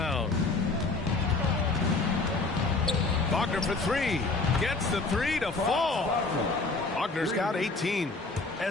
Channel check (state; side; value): quieter; right; 3.6 dB